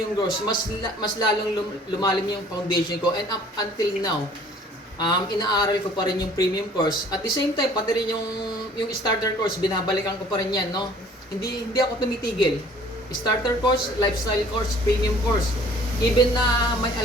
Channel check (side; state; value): both; normal; correlation 0.54